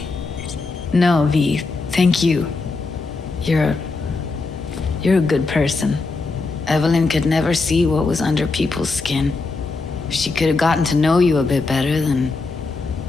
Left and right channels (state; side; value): quieter; right; 3.8 dB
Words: No, V. Thank you. You're a good person. Evelyn could never see what was under people's skin. If she could have gotten to know you a bit better, then...